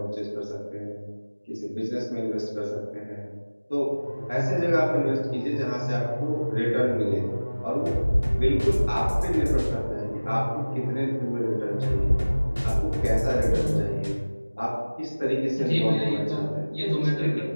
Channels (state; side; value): inverted; both; correlation -1.00